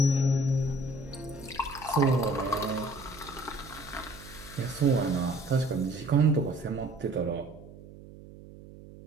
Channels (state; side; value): noise; right; hum, 18 dB below the sound